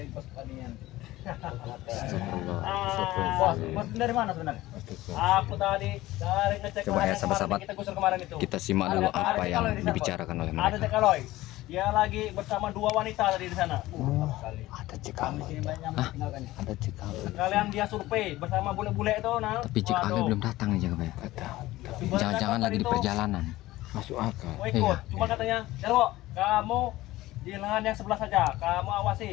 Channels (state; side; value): quieter; right; 17.1 dB